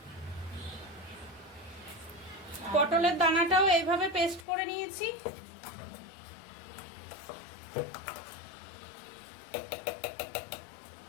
পটলের দানাটাও এইভাবে পেস্ট করে নিয়েছি।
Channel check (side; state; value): right; drops out; at 4.5 s